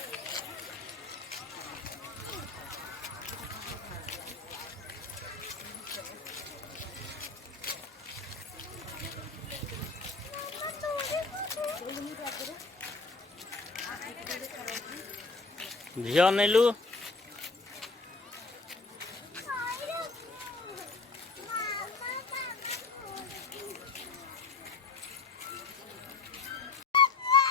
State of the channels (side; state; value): right; quieter; 4.0 dB